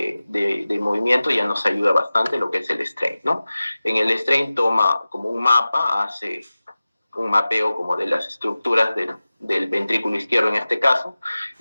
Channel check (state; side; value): inverted; both; correlation -0.96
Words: movimiento ya nos ayuda bastante lo que es el strain, ¿no? En el strain toma como un mapa, hace un mapeo como de las estructuras del ventrículo izquierdo en este caso,